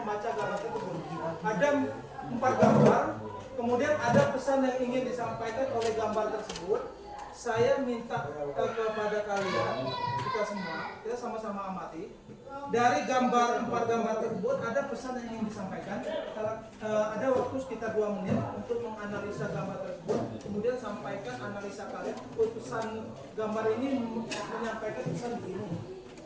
gambar tersebut. Ada 4 gambar, kemudian ada pesan yang ingin disampaikan oleh gambar tersebut. Saya minta kepada kalian, kita sama-sama amati. Dari 4 gambar tersebut ada pesan yang ingin disampaikan. Ada waktu sekitar 2 menit untuk menganalisa gambar tersebut. Kemudian sampaikan analisa kalian. Pesan gambar ini menyampaikan pesan begini.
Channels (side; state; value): both; identical; correlation 1.00